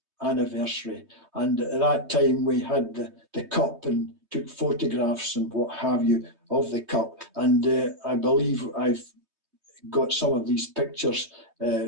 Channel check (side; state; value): left; late; 3.2 ms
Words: anniversary. And at that time we had the cup and took photographs and what have you of the cup. And I believe I've got some of these pictures